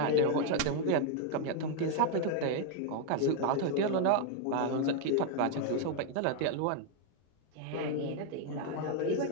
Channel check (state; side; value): different; both; correlation 0.00